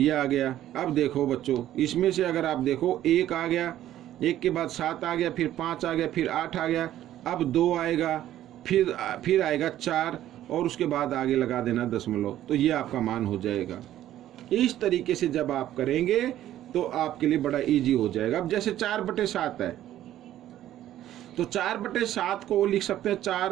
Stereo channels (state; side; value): quieter; left; 12.7 dB